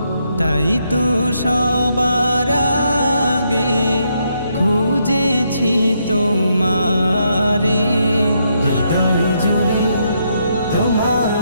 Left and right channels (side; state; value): both; inverted; correlation -0.77